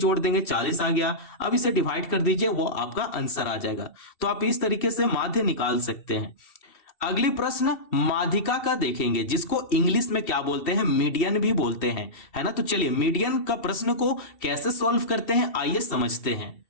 देंगे, 40 आ गया। अब इसे डिवाइड कर दीजिए, वो आपका आंसर आ जाएगा। तो आप इस तरीके से माध्य निकाल सकते हैं। अगली प्रश्न माध्यिका का देखेंगे, जिसको इंग्लिश में क्या बोलते हैं, मीडियन भी बोलते हैं, है ना। तो चलिए मीडियन का प्रश्न को कैसे सॉल्व करते हैं, आइए समझते हैं।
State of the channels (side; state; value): right; late; 2.7 ms